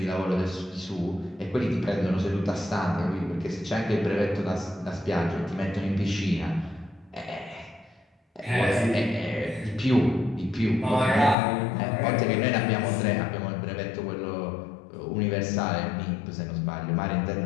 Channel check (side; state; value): right; drops out; at 11.4 s